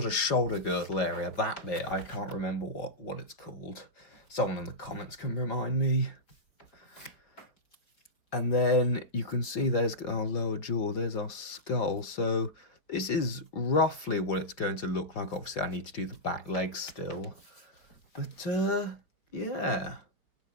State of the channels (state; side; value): late; right; 4.6 ms